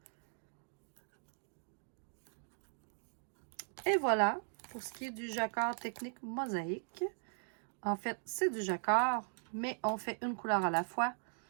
Et voilà, pour ce qui est du jacquard technique mosaïque. En fait, c'est du jacquard, mais on fait une couleur à la fois.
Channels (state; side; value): silent; left; 52 dB below the other